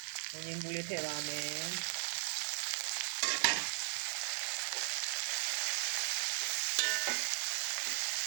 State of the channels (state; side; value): silent; left; 53 dB below the other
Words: ငင်းဘူးလေးထည့်ပါမယ်